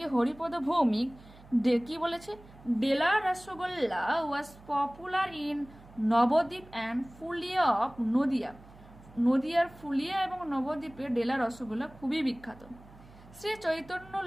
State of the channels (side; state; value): right; noise; hum, 22 dB below the sound